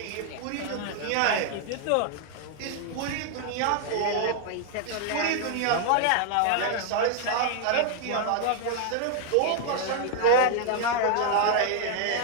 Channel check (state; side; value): different; both; correlation 0.00